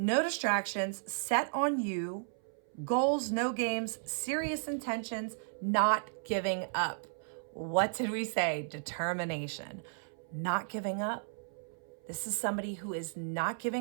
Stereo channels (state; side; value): silent; left; 55 dB below the other